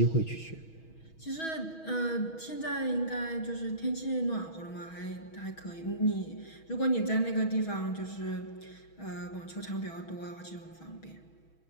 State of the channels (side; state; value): right; late; 6.2 ms